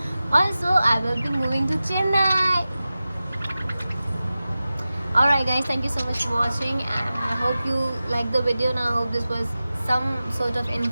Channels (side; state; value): both; inverted; correlation -0.95